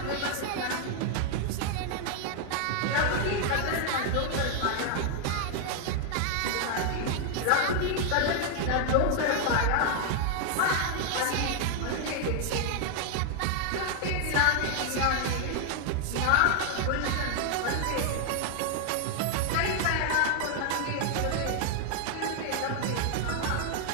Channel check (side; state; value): both; different; correlation 0.00